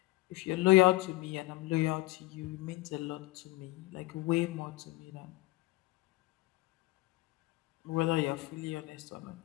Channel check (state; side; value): quieter; right; 19.8 dB